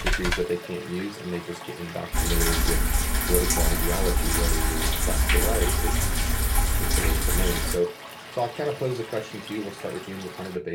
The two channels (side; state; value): both; identical; correlation 1.00